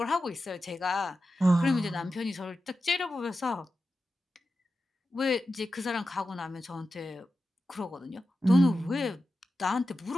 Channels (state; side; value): normal; both; correlation 0.92